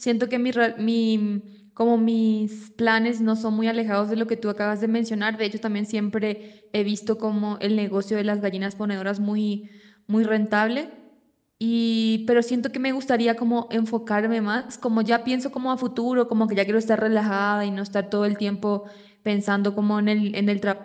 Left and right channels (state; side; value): identical; both; correlation 1.00